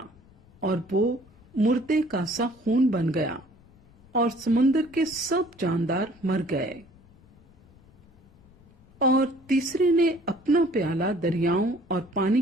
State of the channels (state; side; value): noise; left; rumble, 27 dB below the sound